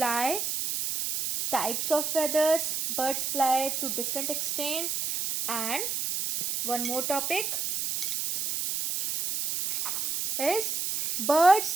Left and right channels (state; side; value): noise; right; hiss, 1 dB below the sound